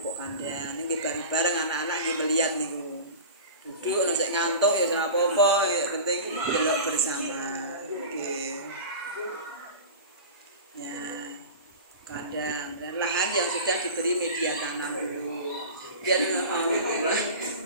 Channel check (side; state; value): both; inverted; correlation -0.33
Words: kandang. Ini bareng-bareng anak-anak nggih melihat niku. Duduk nek ngantuk ya ora apa-apa, ya penting delok bersama. Oke. Ya. Kandang dan lahan yang sudah diberi media tanam dulu. Biar mau